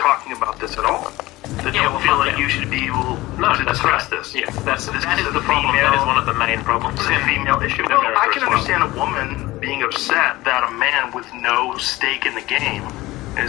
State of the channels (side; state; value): right; quieter; 18.8 dB